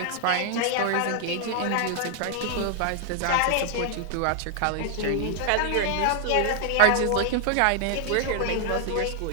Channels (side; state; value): both; different; correlation 0.00